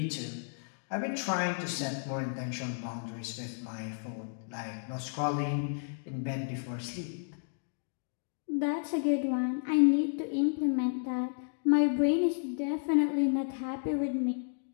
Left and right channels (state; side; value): silent; right; digital silence